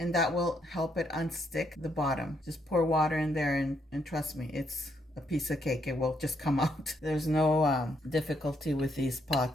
that will help it unstick the bottom. Just pour water in there and trust me, it's a piece of cake. It will just come out. There's no difficulty with these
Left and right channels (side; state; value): both; normal; correlation 0.74